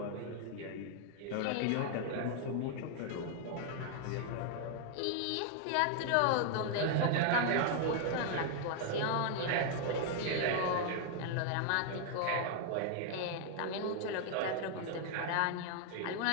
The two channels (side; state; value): both; different; correlation 0.00